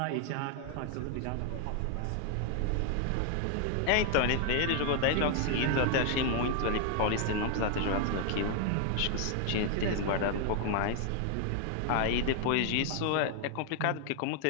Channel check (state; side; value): different; both; correlation 0.00